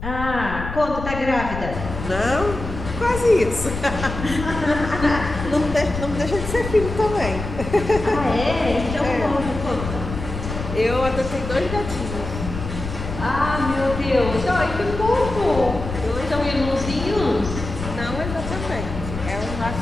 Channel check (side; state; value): left; noise; rumble, 7 dB below the sound